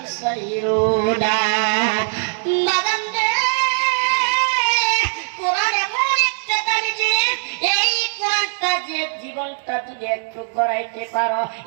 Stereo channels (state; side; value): silent; left; digital silence